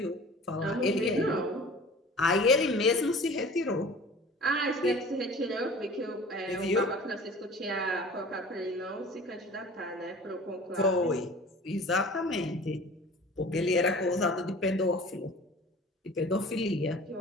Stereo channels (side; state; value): both; normal; correlation 0.43